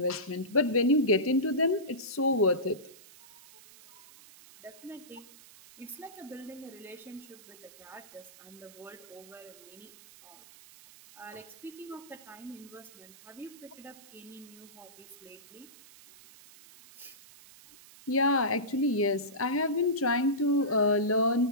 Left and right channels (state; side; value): noise; right; hiss, 21 dB below the sound